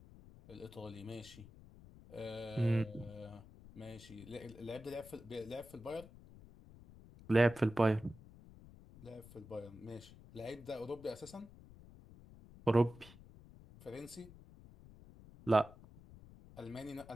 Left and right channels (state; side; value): noise; left; rumble, 19 dB below the sound